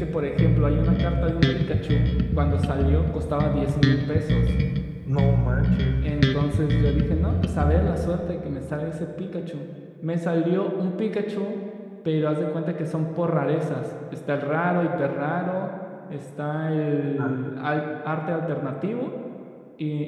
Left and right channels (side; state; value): both; identical; correlation 1.00